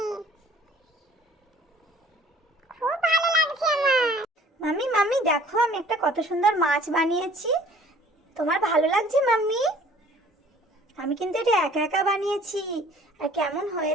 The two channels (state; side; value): normal; both; correlation 0.53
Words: দেখো আমি একটা কত সুন্দর মাছ বানিয়েছি। তোমার ভালো লাগছে মাম্মি? আমি কিন্তু এটা একা একা বানিয়েছি। আর কেমন